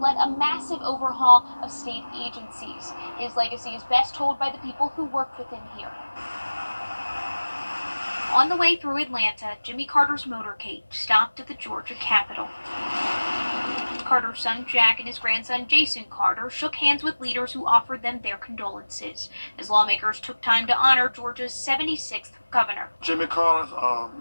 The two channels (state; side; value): inverted; both; correlation -1.00